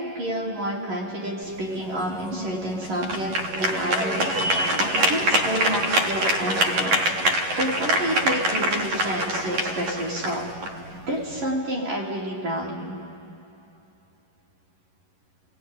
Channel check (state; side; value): late; left; 11 ms